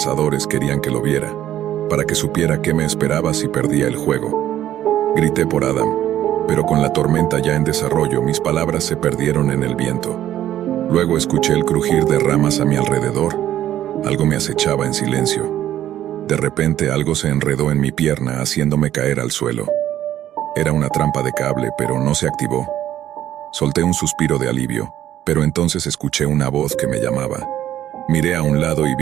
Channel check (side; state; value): left; quieter; 12.2 dB